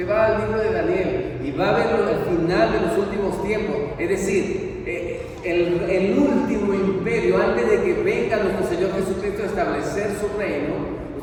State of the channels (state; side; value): identical; both; correlation 1.00